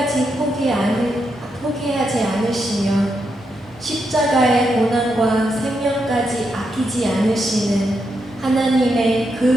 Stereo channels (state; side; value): normal; both; correlation 0.82